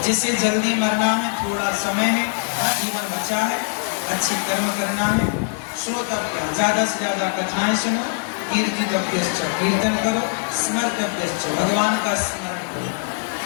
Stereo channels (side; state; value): right; silent; 64 dB below the other